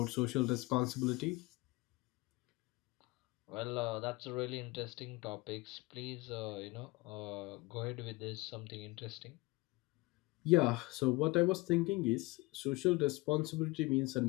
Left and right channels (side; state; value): right; quieter; 22.6 dB